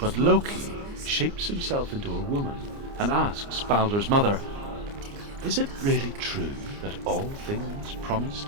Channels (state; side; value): late; left; 29 ms